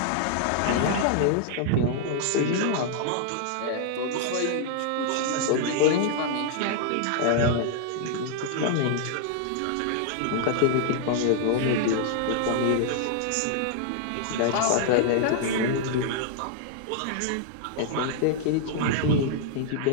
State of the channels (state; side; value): different; both; correlation -0.01